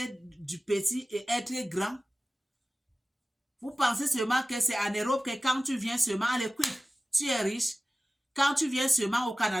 du petit et être grand. Vous pensez seulement que c'est en Europe que quand tu viens seulement à l'équipe, tu es riche. Quand tu viens seulement au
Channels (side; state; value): both; normal; correlation 0.97